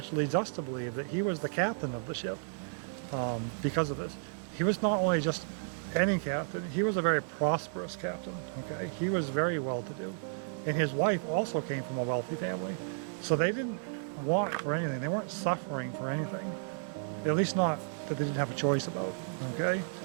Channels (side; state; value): left; silent; digital silence